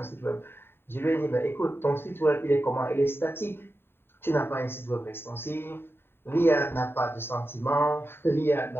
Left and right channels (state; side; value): late; right; 0.11 ms